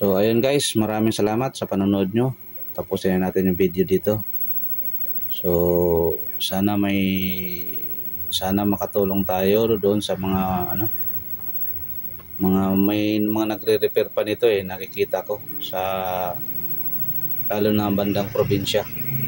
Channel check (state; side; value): identical; both; correlation 1.00